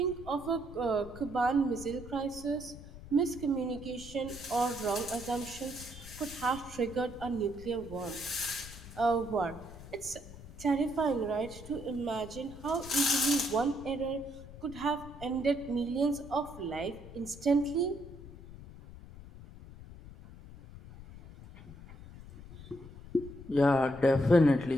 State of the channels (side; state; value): left; noise; rumble, 15 dB below the sound